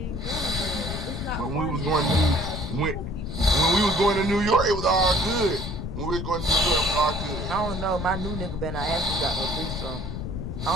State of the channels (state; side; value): noise; left; rumble, 5 dB below the sound